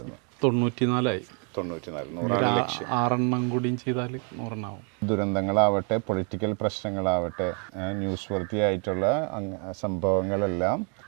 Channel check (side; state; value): left; quieter; 38.4 dB